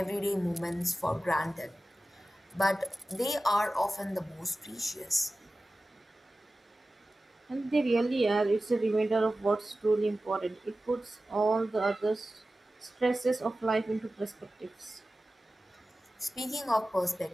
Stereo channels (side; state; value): both; normal; correlation 0.95